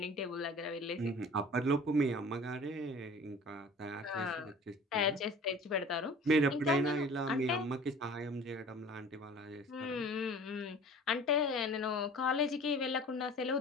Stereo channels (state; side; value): normal; both; correlation 0.44